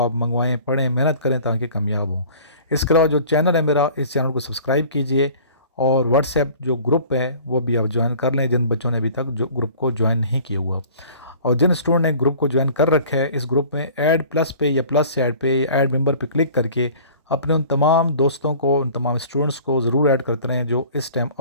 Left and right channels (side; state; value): both; inverted; correlation -0.47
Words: मंगवाएं, पढ़ें, मेहनत करें ताकि कामयाब हों। इसके अलावा जो चैनल है मेरा, इस चैनल को सब्सक्राइब कीजिए और व्हाट्सएप जो ग्रुप है वो भी आप ज्वाइन कर लें जिन बच्चों ने अभी तक जो ग्रुप को ज्वाइन नहीं किया हुआ। और जिन स्टूडेंट ने ग्रुप को ज्वाइन कर रखा है, इस ग्रुप में ऐड प्लस पे या प्लस से ऐड पे ऐड मेंबर पे क्लिक करके अपने उन तमाम दोस्तों को, उन तमाम स्टूडेंट्स को ज़रूर ऐड करते रहें जो इस टाइम